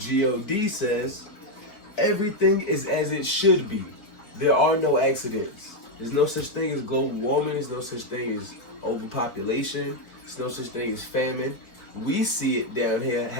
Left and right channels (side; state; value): right; late; 4.7 ms